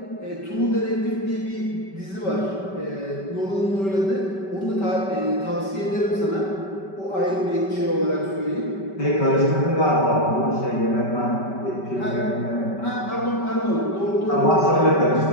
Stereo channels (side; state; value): right; late; 5.2 ms